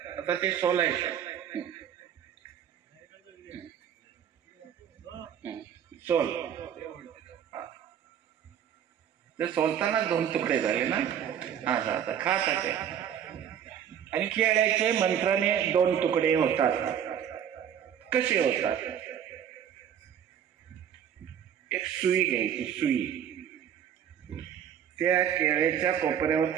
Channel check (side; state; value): left; quieter; 9.1 dB